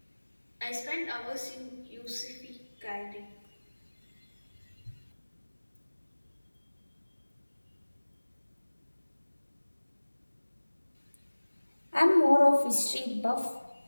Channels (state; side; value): inverted; both; correlation -1.00